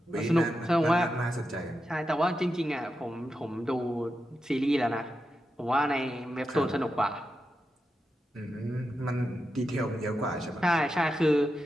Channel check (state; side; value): normal; both; correlation 0.88